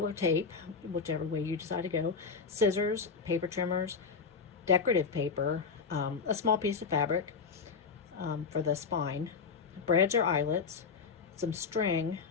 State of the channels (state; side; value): quieter; right; 5.3 dB